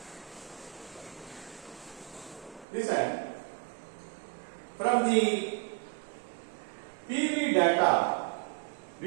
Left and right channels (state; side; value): drops out; left; at 2.7 s